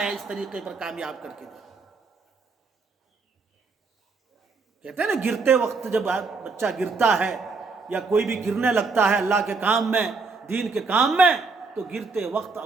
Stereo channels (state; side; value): quieter; left; 4.3 dB